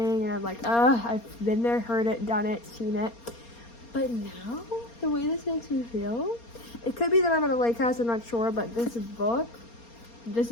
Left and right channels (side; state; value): right; late; 4.3 ms